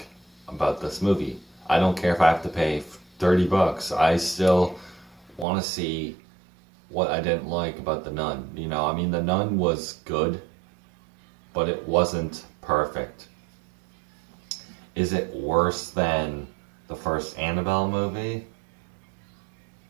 about this movie. I don't care if I have to pay $30. I still want to see what I didn't like about The Nun. You know, I mean, The Nun was good, but it wasn't perfect. Is it worse than the first Annabelle movie?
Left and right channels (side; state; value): left; drops out; at 5.5 s